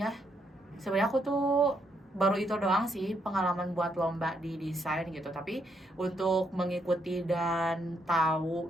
sebenarnya aku tuh baru itu doang sih pengalaman buat lomba di desain gitu. Tapi untuk mengikuti dan tahu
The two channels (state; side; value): normal; both; correlation 0.76